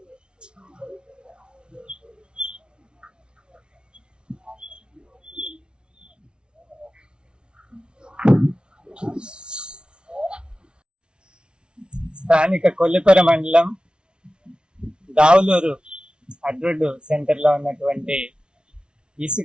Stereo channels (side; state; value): left; late; 0.056 ms